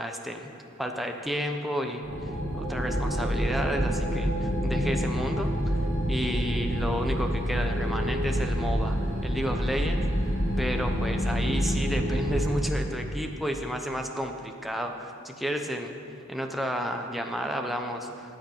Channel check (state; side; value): normal; both; correlation 0.82